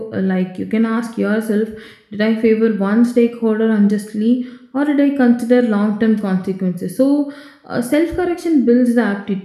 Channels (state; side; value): identical; both; correlation 1.00